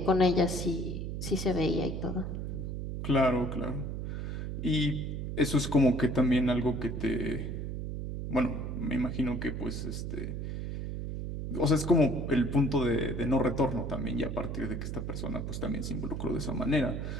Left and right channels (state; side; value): noise; right; hum, 4 dB below the sound